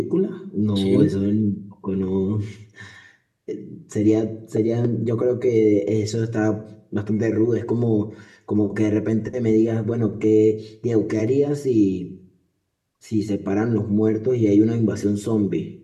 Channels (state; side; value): identical; both; correlation 1.00